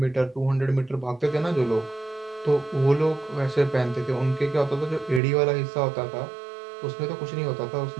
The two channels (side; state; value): left; drops out; at 5.2 s